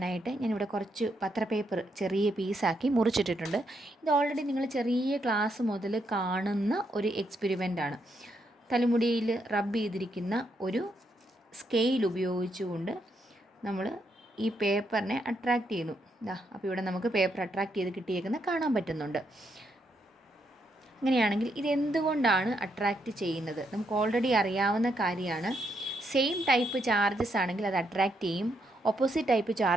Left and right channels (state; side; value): normal; both; correlation 0.78